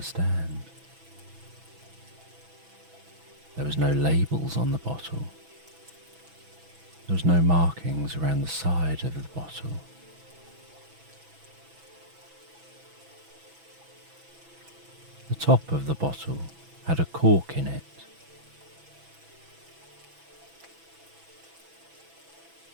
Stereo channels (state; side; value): late; left; 6.1 ms